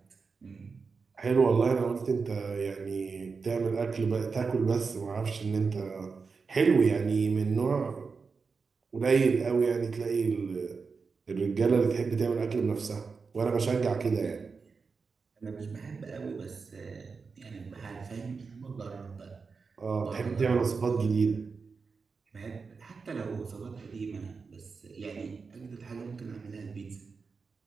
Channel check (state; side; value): quieter; left; 4.9 dB